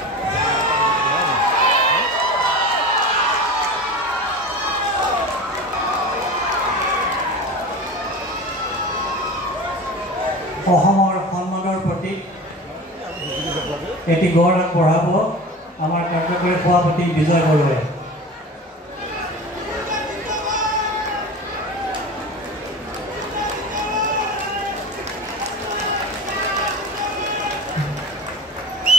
অসমৰ সন্মানৰ প্ৰতি এটি গড় আগবঢ়াব আমাৰ কাৰ্যকৰী সভাপতি বিজয় বৰুৱাই।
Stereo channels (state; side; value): normal; both; correlation 0.33